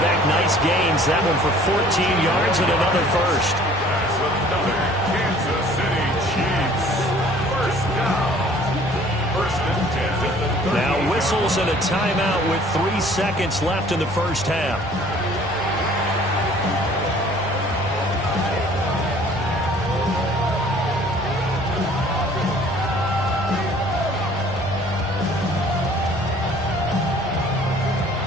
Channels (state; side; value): normal; both; correlation 0.53